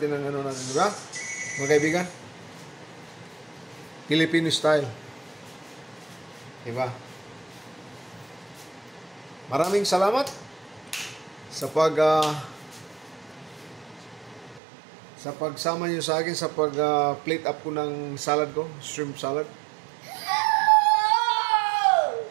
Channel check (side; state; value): left; drops out; at 14.6 s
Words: ng ano natin, di ba? Mga kaibigan? Filipino style. Di ba? Maraming salamat sa pagsama niyo sa akin sa plate up ko ng salad ko, shrimp salad.